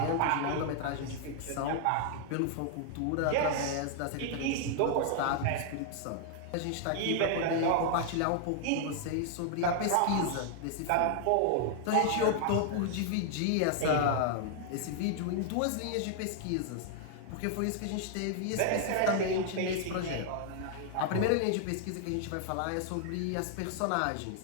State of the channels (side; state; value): both; different; correlation 0.00